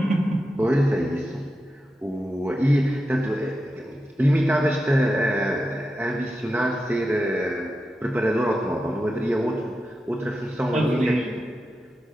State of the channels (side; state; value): both; normal; correlation 0.90